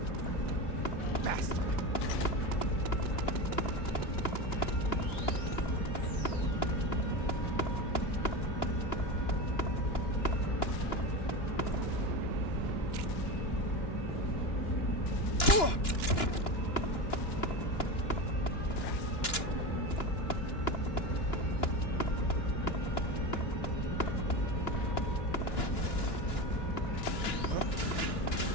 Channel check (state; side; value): late; right; 2.9 ms